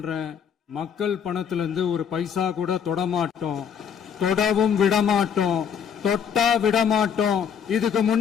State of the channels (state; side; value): quieter; right; 7.6 dB